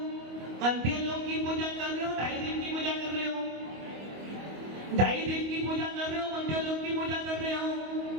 मध्य लोक की पूजा कर रहे हो, 2.5 द्वीप की पूजा कर रहे हो? 2.5 द्वीप की पूजा कर रहे हो, मध्य लोक की पूजा कर रहे हो?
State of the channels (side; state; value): left; late; 25 ms